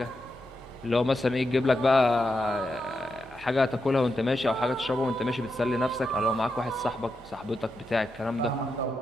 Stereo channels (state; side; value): normal; both; correlation 0.86